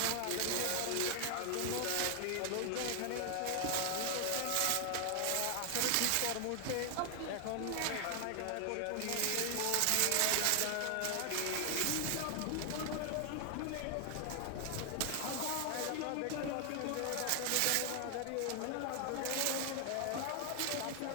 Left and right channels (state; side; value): different; both; correlation 0.00